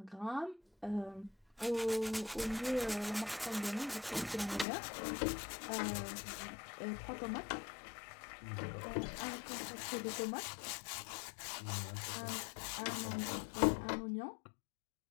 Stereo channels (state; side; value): drops out; right; at 4.7 s